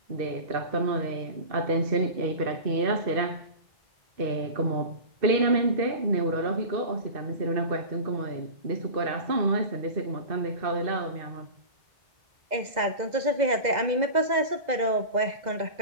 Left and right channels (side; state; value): left; late; 2.0 ms